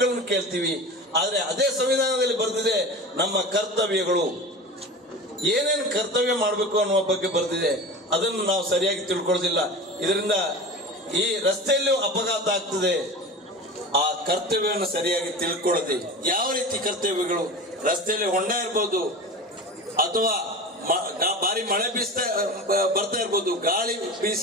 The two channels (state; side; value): normal; both; correlation 0.32